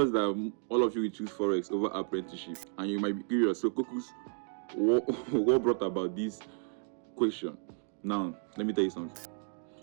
that all of you will choose Forex over apprenticeship, and you might be curious. So Kokus, what brought about this question? Now, let me tell you something.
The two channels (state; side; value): silent; left; 56 dB below the other